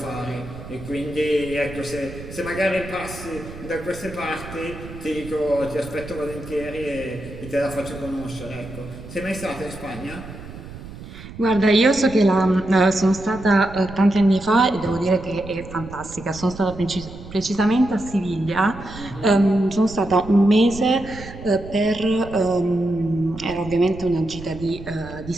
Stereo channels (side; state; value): right; noise; rumble, 14 dB below the sound